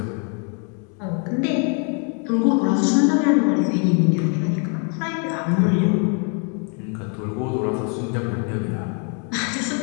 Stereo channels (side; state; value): right; quieter; 38.8 dB